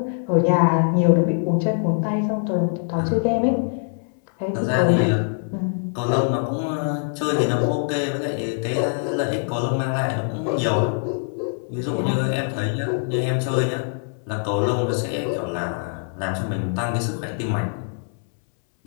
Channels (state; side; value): silent; right; 63 dB below the other